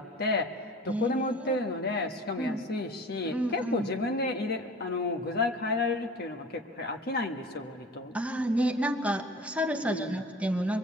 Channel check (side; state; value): both; normal; correlation 0.41